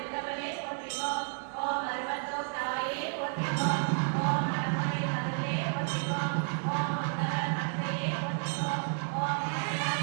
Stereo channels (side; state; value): left; silent; 57 dB below the other